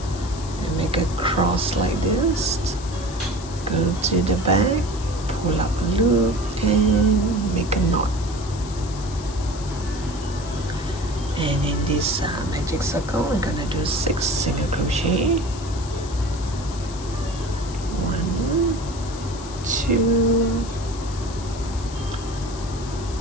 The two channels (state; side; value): noise; left; hiss, 15 dB below the sound